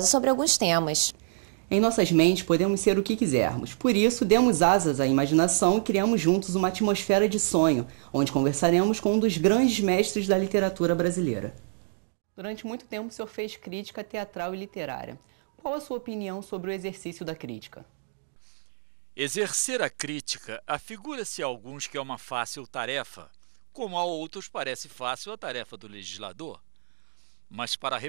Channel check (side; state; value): left; silent; digital silence